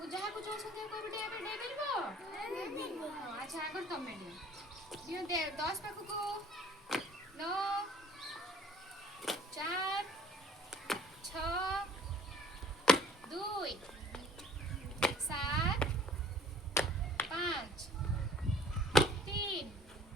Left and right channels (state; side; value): normal; both; correlation 0.52